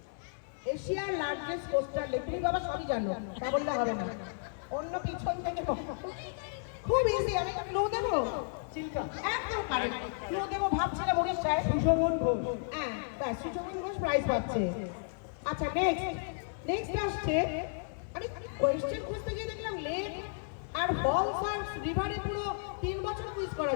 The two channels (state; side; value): silent; right; digital silence